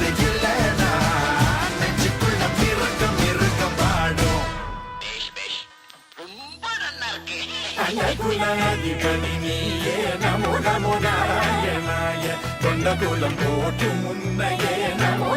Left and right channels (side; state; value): both; identical; correlation 1.00